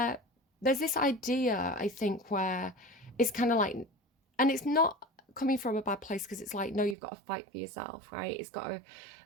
there's this idea, I think, where it's kind of like, and it's not coming from a bad place, because it's like, no, you've got to fight for yourself, right?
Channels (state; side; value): drops out; left; at 7.0 s